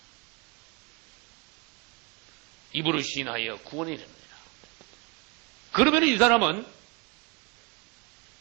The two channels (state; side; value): quieter; left; 28.1 dB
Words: 입으로 시인하여 구원에 이릅니다. 그러면 이 사람은